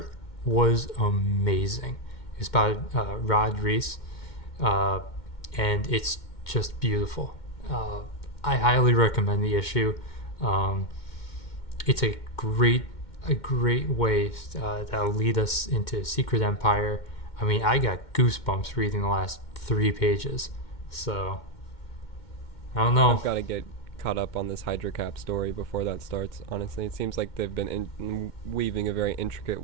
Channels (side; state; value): right; late; 2.1 ms